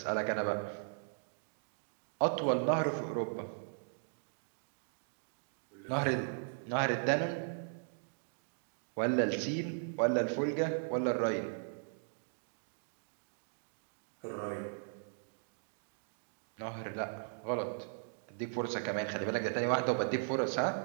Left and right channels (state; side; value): silent; left; digital silence